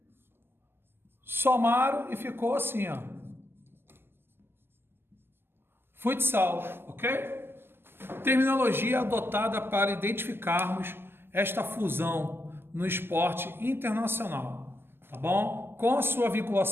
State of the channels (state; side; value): late; left; 0.11 ms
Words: somaram e ficou assim, ó. Futsal, ok? Terminologia adotada para identificarmos esta fusão no esporte internacional, tá bom? Com a sua